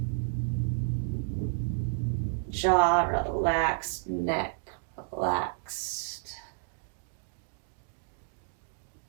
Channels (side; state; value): left; silent; digital silence